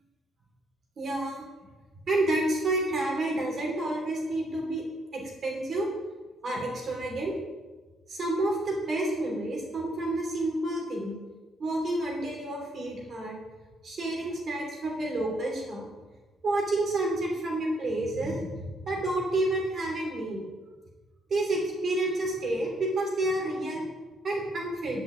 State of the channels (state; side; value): normal; both; correlation 0.71